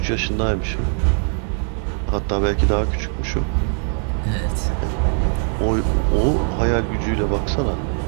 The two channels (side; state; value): left; silent; 56 dB below the other